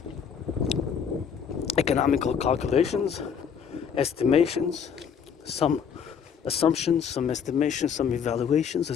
economical calculations, estimations, some assumptions, some estimations, some evaluations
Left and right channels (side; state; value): right; quieter; 7.2 dB